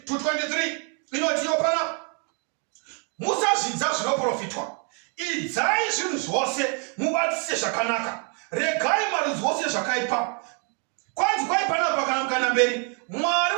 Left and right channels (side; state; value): left; quieter; 39.2 dB